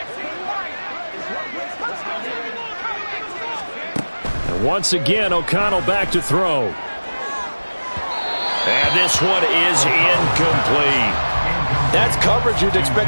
And once again, O'Connell back to throw. And this one is incomplete. That's coverage you'd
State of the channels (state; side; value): inverted; both; correlation -1.00